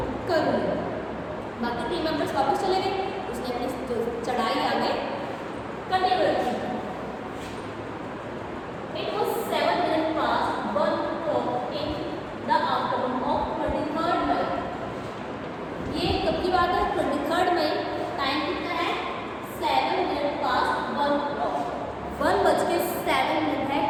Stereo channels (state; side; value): identical; both; correlation 1.00